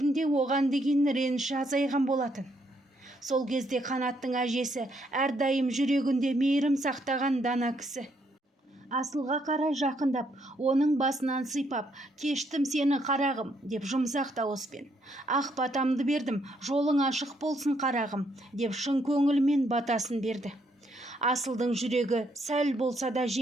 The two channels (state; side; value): normal; both; correlation 0.73